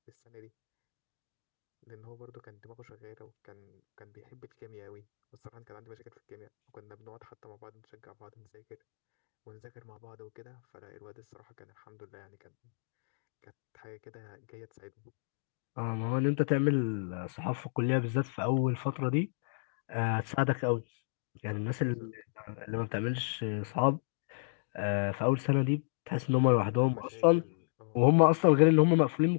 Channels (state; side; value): silent; right; digital silence